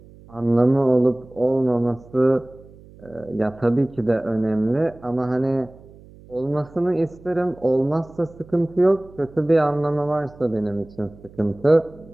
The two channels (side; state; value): right; noise; hum, 22 dB below the sound